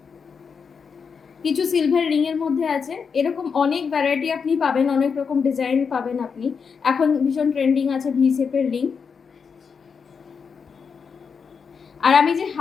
কিছু সিলভার রিং এর মধ্যে আছে, এরকম অনেক ভ্যারাইটি আপনি পাবেন, অনেক রকম ডিজাইন পাবেন আপনি। এখন ভীষণ ট্রেন্ডিং আছে ভি শেপের রিং। আর আমি যে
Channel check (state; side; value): quieter; right; 5.9 dB